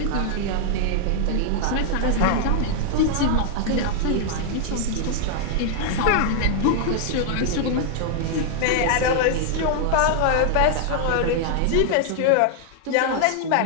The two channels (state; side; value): different; both; correlation -0.01